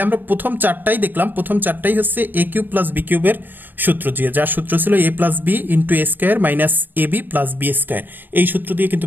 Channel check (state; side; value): late; left; 0.092 ms